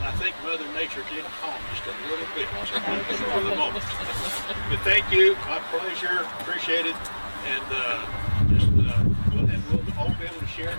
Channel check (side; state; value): both; inverted; correlation -1.00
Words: I think Mother Nature did calm just a little bit for the moment. But thank you, my pleasure, appreciate it. And we'll all be able to share